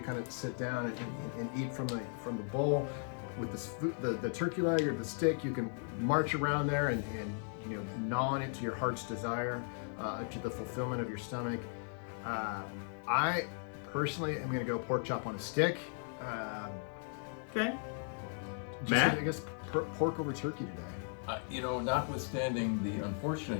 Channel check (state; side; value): silent; right; 53 dB below the other